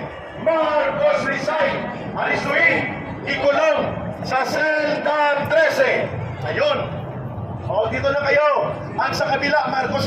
Marcos resign, aristuhin, ikulong sa selda 13. Ayun. O, dito na kayo. Ang sa kabila,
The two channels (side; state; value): both; identical; correlation 1.00